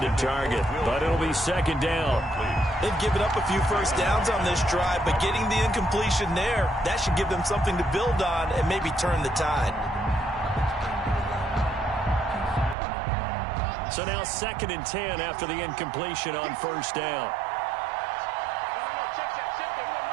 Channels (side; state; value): left; drops out; at 12.8 s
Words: target, but it'll be 2nd down. They've given up a few first downs on this drive, but getting the incompletion there, that should give them something to build on and maybe turn the tide. So now 2nd and 10 after the incompletion on 1st down.